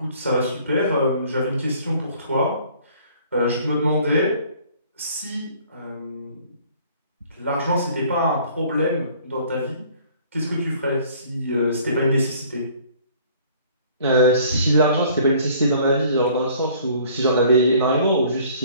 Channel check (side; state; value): both; inverted; correlation -0.55